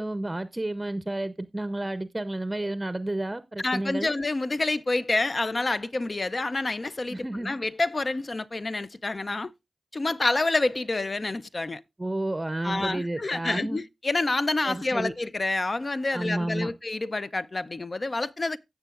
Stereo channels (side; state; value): both; normal; correlation 0.97